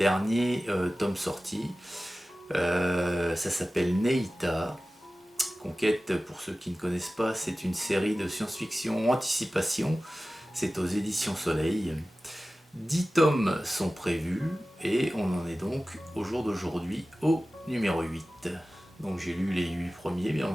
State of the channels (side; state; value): both; normal; correlation 0.96